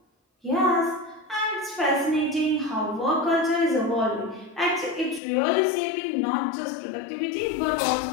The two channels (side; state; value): right; drops out; at 5.2 s